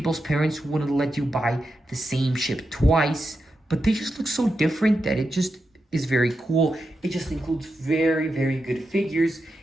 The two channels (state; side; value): normal; both; correlation 0.88